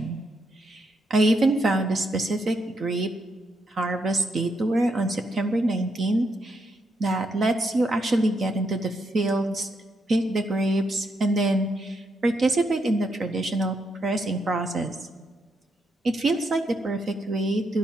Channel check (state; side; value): normal; both; correlation 0.79